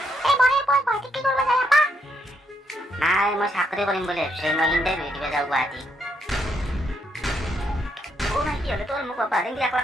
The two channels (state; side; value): normal; both; correlation 0.76